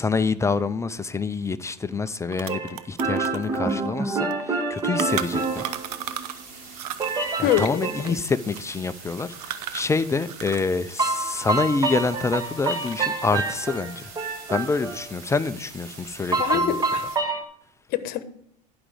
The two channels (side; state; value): both; normal; correlation 0.49